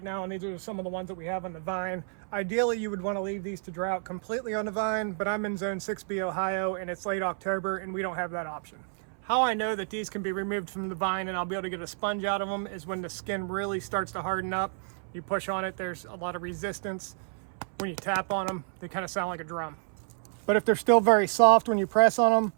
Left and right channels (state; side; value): silent; left; 58 dB below the other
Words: now, and these are some of the ones that we have on the vine. Ideally, you would want to leave these to dry out completely on the vine, but I'm in zone 6B Ohio and it's late October and we don't have that option. How I know that these can be removed from the vine and I'll be able to get a sponge out of them is when the skin really starts to harden up. You push on it, there's a lot of resistance. When you tap on them, they kind of sound like a drum. But if they're still very soft when you press on them,